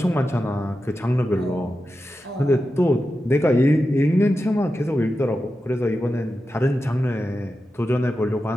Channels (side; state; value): both; normal; correlation 0.91